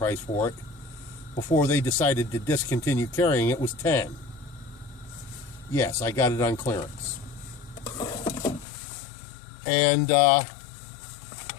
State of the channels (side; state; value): right; drops out; at 8.7 s